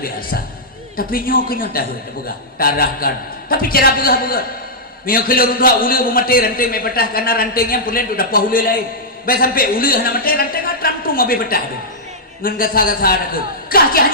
biasa. Tapi nyoknya dah buka tarahkan. Tapi cara buka. Mio kelur dua ulu mati ranting mai petah karena rantingnya pulen tu dapat ulu lain. Baik sampai ulu hana mati ranting atram tu mau petah tu. Ngan gasa-gasa aku. Kah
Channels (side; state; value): both; normal; correlation -0.10